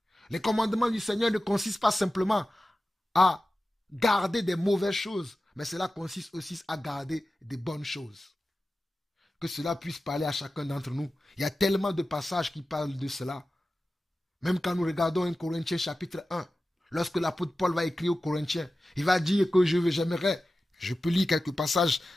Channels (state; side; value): normal; both; correlation 0.94